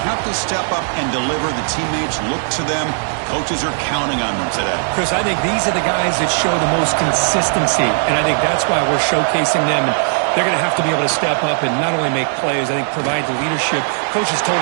have to step up and deliver. The teammates look to them. Coaches are counting on them today. Chris, I think these are the guys that show the most consistency, and I think that's why we're showcasing them. And they're going to have to be able to step up and not only make plays, I think provide the leadership. Coaches told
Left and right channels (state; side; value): silent; left; 68 dB below the other